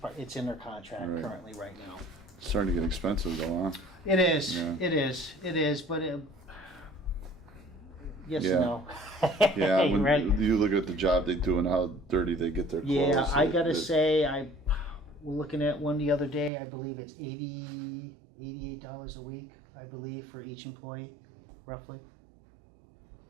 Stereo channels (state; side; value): drops out; left; at 16.5 s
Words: it's in their contract Right. currently right now. It's starting to get expensive though, huh? It is, Yeah. it is, but yes Yeah. and no. Yeah, when Right? you look at the job they do and how dirty they get their clothes. Yeah, I gotta it- say, we're looking at one the other day, I believe it's $88 a week, I believe, for each employee, roughly.